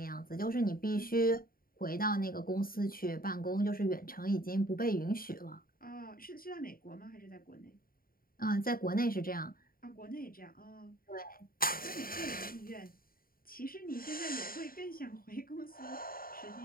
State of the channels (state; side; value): late; right; 0.42 ms